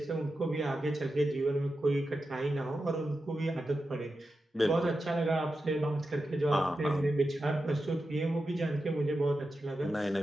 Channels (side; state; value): both; normal; correlation 0.90